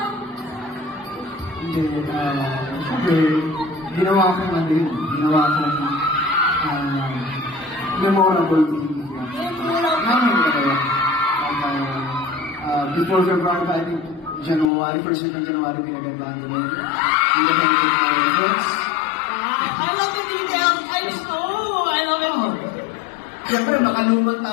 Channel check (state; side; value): drops out; right; at 14.7 s